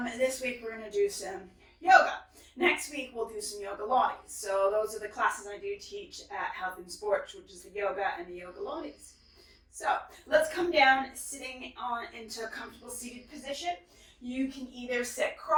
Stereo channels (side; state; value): both; identical; correlation 1.00